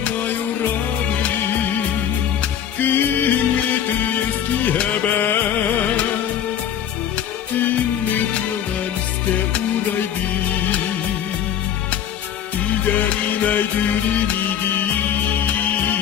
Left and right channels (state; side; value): quieter; right; 9.5 dB